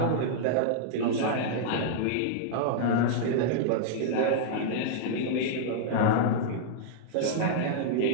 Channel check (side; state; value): both; different; correlation -0.01